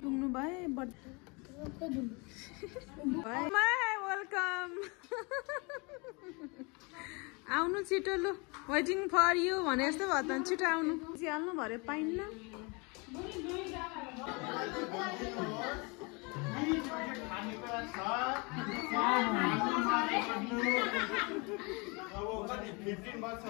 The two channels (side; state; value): right; quieter; 29.7 dB